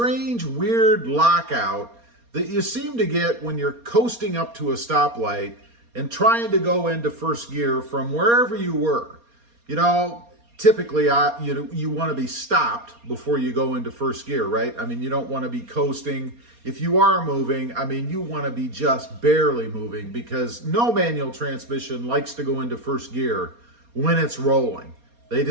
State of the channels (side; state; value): left; late; 4.3 ms